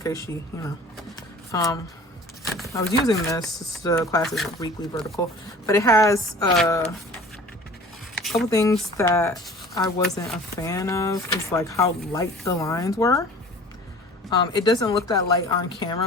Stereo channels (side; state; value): both; normal; correlation 0.44